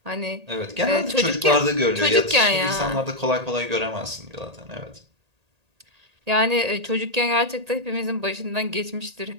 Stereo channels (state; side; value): late; left; 1.8 ms